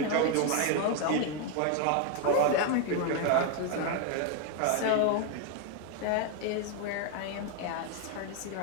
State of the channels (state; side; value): different; both; correlation 0.01